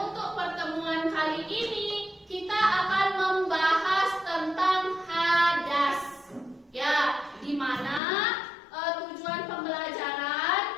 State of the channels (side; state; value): right; drops out; at 8.0 s